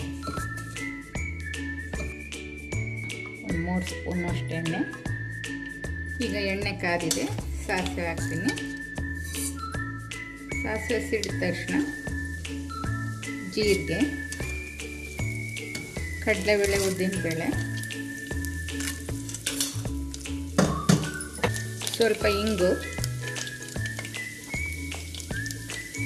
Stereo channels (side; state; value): both; identical; correlation 1.00